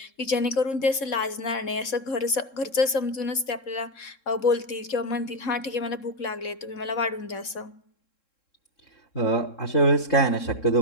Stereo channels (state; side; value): late; right; 3.7 ms